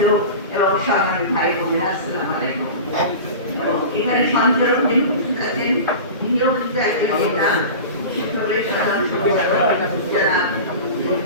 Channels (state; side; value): inverted; both; correlation -0.32